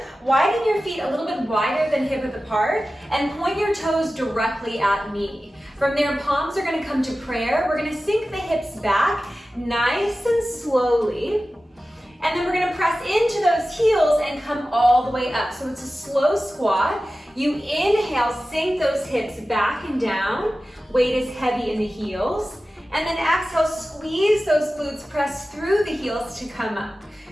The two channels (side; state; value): both; normal; correlation 0.95